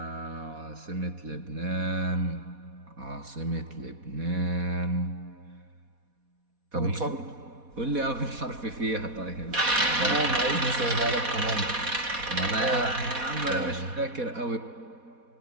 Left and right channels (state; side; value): late; left; 4.1 ms